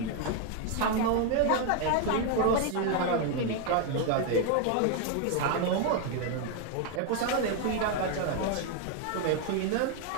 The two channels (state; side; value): different; both; correlation 0.01